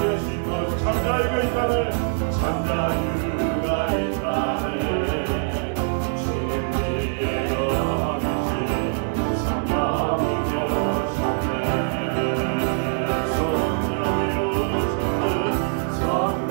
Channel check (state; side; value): silent; left; digital silence